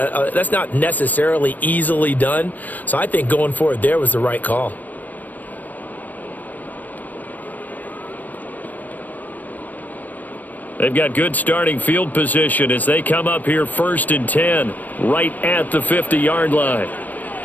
necessarily easily done, so I think going for it there was the right call. They've got good starting field position as they come up here 1st and 10, right at the 50-yard line.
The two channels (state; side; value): late; right; 0.084 ms